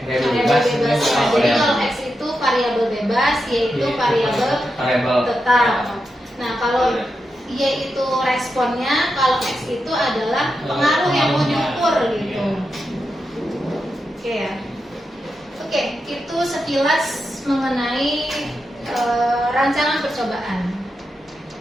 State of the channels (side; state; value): both; normal; correlation 0.87